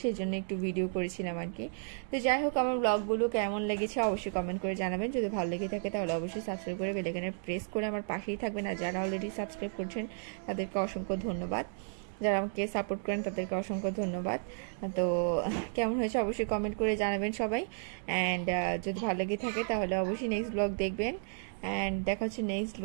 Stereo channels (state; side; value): silent; left; digital silence